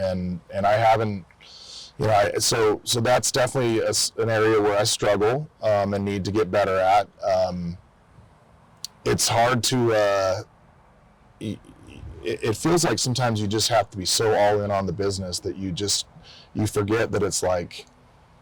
I haven't, so that's definitely an area where I struggle and need to get better at. It's hard to, it feels like sometimes you just have to be so all in on the business that you forget that it's like,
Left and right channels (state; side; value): identical; both; correlation 1.00